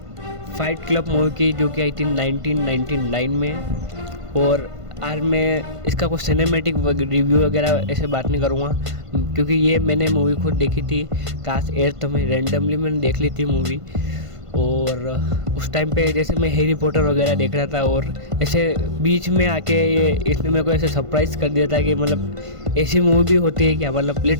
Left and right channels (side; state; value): left; late; 1.5 ms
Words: फाइट क्लब मूवी की, जो कि आई थी 1999 में। और आज मैं इसका कुछ सिनेमैटिक रिव्यू वगैरह ऐसे बात नहीं करूँगा, क्योंकि ये मैंने मूवी खुद देखी थी क्लास 8th में। रैंडमली मैंने देख ली थी मूवी। और उस टाइम पे जैसे मैं हैरी पॉटर वगैरह देख रहा था, और ऐसे बीच में आके ये इसने मेरे को ऐसे सरप्राइज़ कर दिया था कि मतलब ऐसी मूवी भी होती है क्या। मतलब